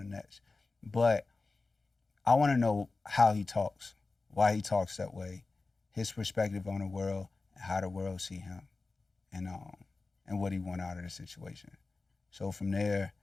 next. But I want to know how he talks, why he talks that way, his perspective on the world, and how the world see him, and what he want out of the situation. So from there,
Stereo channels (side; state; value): right; quieter; 3.6 dB